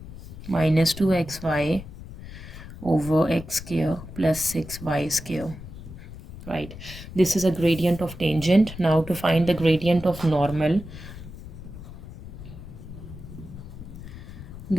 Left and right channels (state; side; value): noise; left; rumble, 13 dB below the sound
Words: minus 2xy over x square plus 6y square, right? This is a gradient of tangent. Now to find the gradient of normal,